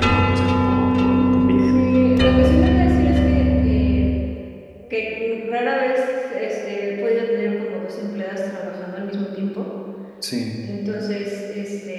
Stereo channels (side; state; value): both; identical; correlation 1.00